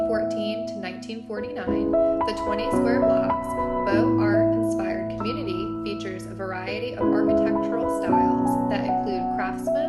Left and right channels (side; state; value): both; identical; correlation 1.00